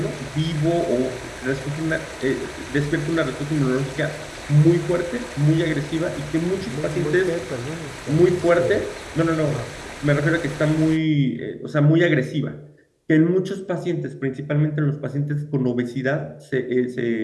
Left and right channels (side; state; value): both; identical; correlation 1.00